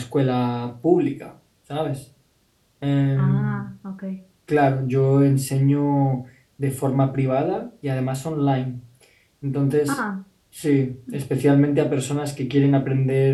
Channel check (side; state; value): both; identical; correlation 1.00